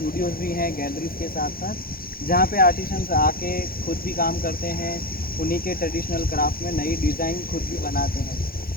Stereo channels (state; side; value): late; right; 0.43 ms